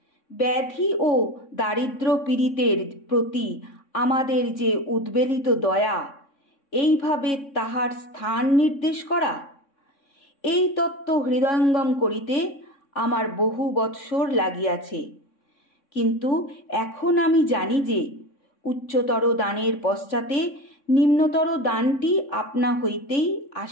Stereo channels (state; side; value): late; right; 3.6 ms